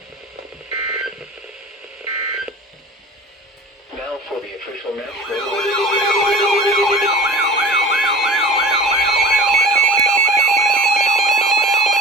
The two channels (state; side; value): normal; both; correlation 0.37